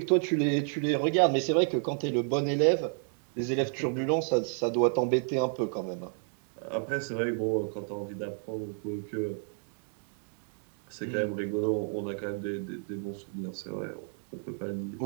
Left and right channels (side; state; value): left; silent; 57 dB below the other